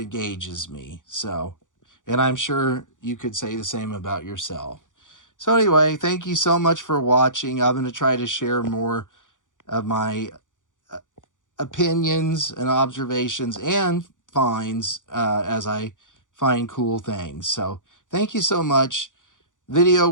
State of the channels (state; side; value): late; right; 0.87 ms